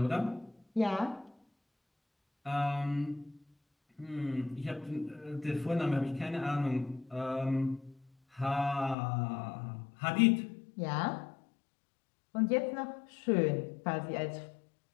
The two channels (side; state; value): right; drops out; at 9.0 s